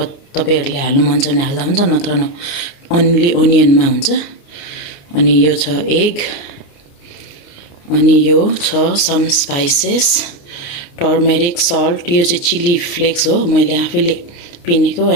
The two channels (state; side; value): late; right; 29 ms